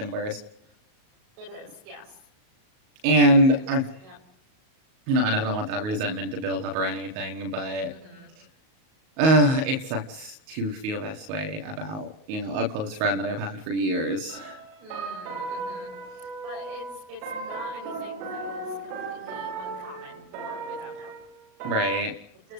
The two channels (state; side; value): late; left; 38 ms